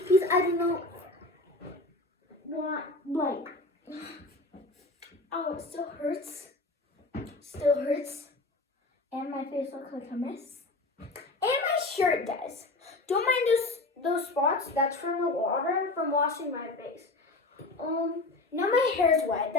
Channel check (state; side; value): quieter; right; 3.0 dB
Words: I don't know what, like, oh, it still hurts. Still hurts. And my face looks like a mess. And my shirt does. Don't mind those spots. That's from the water from washing my face. Now my hair's wet.